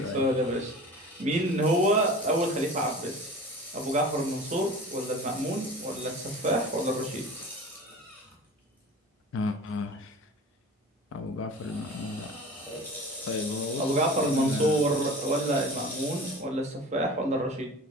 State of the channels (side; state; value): both; normal; correlation 0.38